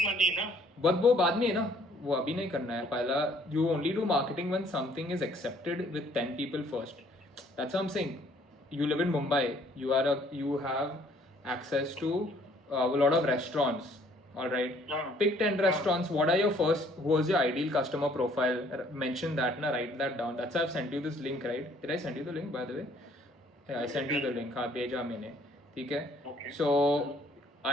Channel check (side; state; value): both; normal; correlation 0.60